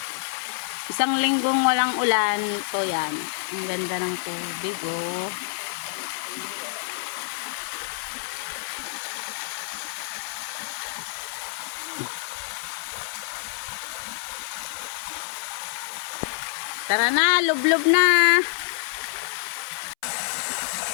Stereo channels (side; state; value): right; silent; 60 dB below the other